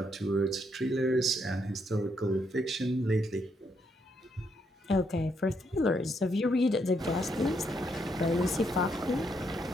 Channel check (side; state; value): both; normal; correlation 0.76